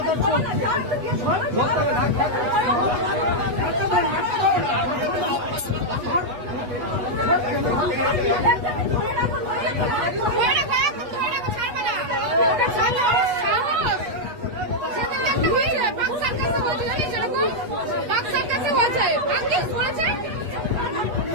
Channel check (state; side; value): late; left; 8.2 ms